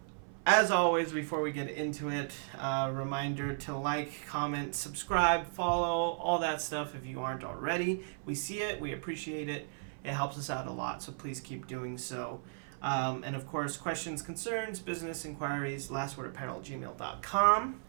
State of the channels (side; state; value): left; silent; 54 dB below the other